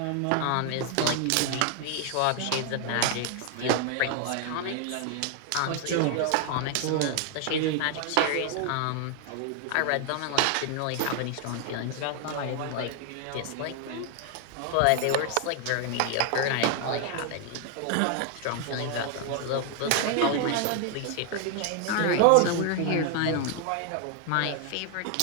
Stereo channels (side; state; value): both; different; correlation 0.00